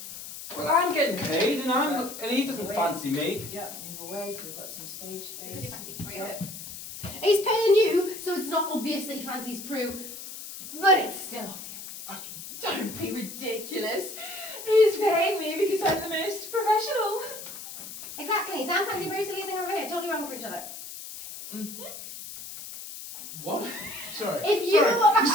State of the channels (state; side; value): noise; left; hiss, 11 dB below the sound